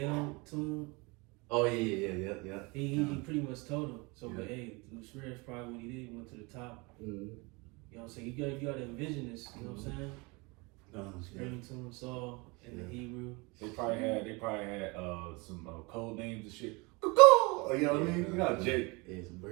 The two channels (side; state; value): left; quieter; 27.1 dB